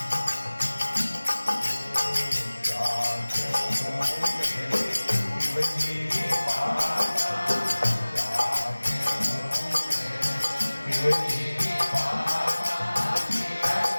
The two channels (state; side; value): inverted; both; correlation -1.00